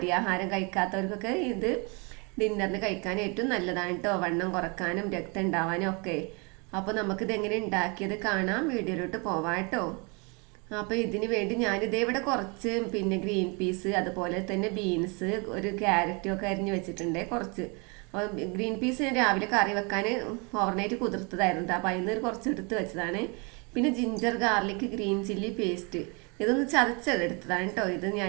കഴിക്കാത്തവർക്കൊക്കെ ഇത് ഡിന്നറിന് കഴിക്കാൻ ഏറ്റവും നല്ലതാണ് കേട്ടോ, വണ്ണം കുറക്കാനും രക്തം ഉണ്ടാവാനും ഒക്കെ. അപ്പോൾ നമുക്കിത് എങ്ങനെ ഉണ്ടാക്കിയത് കാണാം, വീഡിയോയിലോട്ട് പോവാം കേട്ടോ. അപ്പോൾ ഇതിന് വേണ്ടി ഞാനിതേ ഇവിടെ കുറച്ച് പിന്നെ ഗ്രീൻ പീസ്, അതുപോലെ തന്നെ ബീൻസ്, ഒരു ക്യാരറ്റും ഒക്കെ അരിഞ്ഞ് വെച്ചിട്ടുണ്ട് കുറച്ച്. അപ്പോൾ ഗ്രീൻ പീസ് ഞാൻ രാവിലെ കറി വെക്കാൻ ഓവർനൈറ്റ് കുതിർത്തതായിരുന്നു, അപ്പോൾ അതിൽ നിന്ന് കുറച്ച് എടുത്ത് വെച്ചതാണ്. പിന്നെ ginger garlic green chilli paste ഇതൊന്ന് ചതച്ചെടുത്തതാണ് കേട്ടോ. ഇത്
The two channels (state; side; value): quieter; left; 31.6 dB